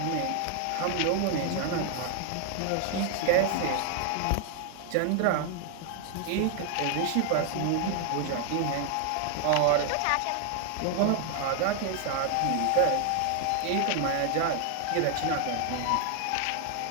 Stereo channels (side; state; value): both; different; correlation 0.00